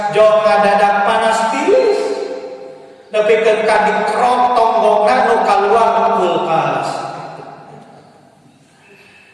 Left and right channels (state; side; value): identical; both; correlation 1.00